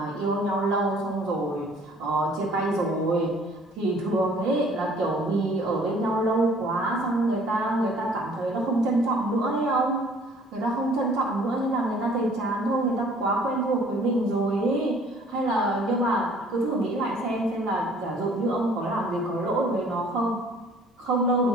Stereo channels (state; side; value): normal; both; correlation 0.55